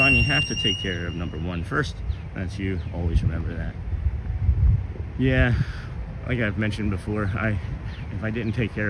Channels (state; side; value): identical; both; correlation 1.00